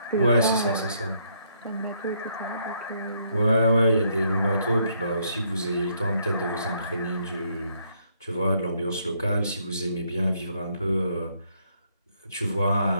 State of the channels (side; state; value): both; inverted; correlation -0.71